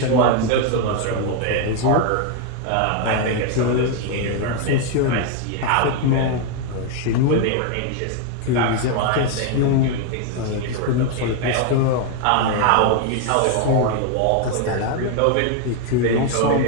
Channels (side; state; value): both; different; correlation 0.01